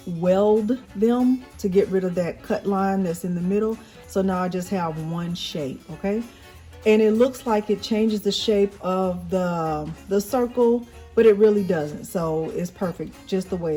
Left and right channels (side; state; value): both; identical; correlation 1.00